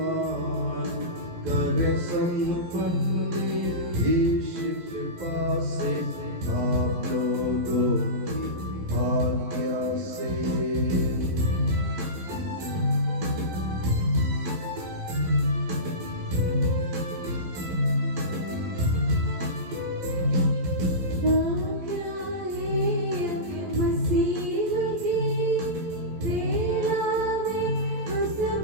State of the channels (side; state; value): left; late; 11 ms